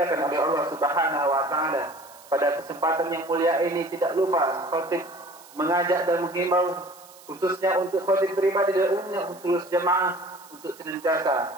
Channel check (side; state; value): right; noise; hiss, 22 dB below the sound